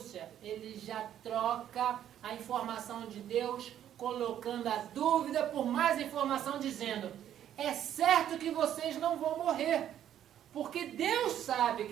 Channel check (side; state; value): left; quieter; 10.7 dB